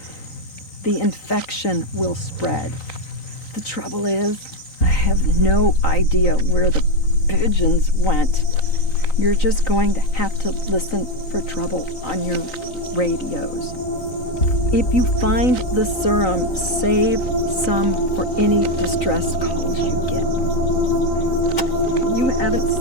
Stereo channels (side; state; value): right; late; 3.9 ms